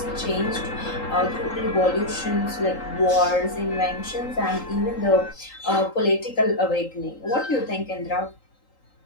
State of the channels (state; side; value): late; right; 3.8 ms